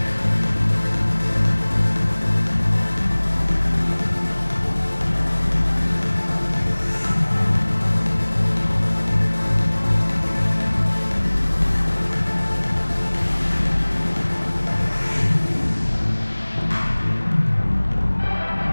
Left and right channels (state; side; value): inverted; both; correlation -1.00